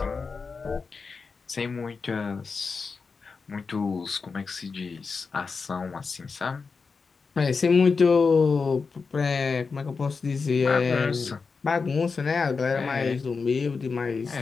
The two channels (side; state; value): right; quieter; 4.8 dB